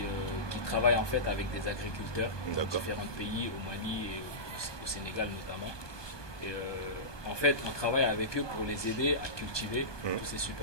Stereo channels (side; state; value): right; late; 1.2 ms